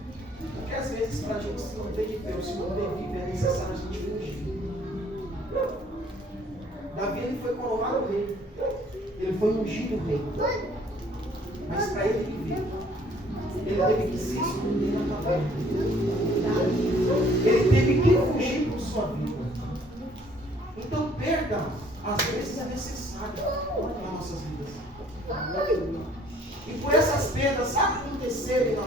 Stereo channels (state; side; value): normal; both; correlation 0.59